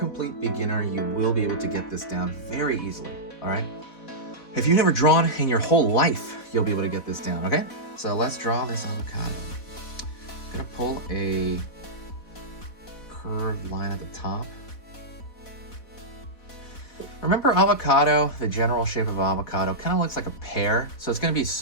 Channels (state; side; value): late; right; 4.1 ms